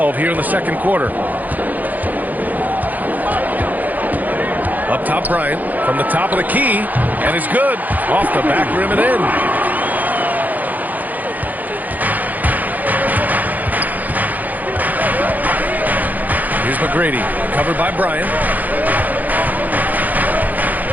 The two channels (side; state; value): left; late; 0.081 ms